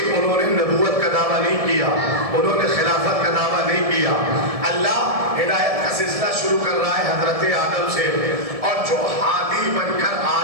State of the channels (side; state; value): left; late; 1.7 ms